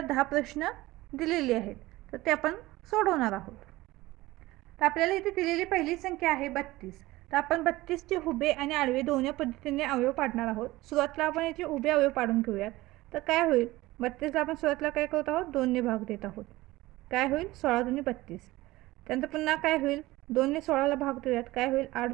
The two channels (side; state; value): left; quieter; 18.7 dB